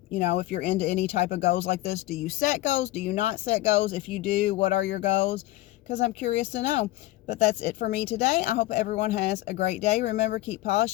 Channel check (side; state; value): right; quieter; 17.3 dB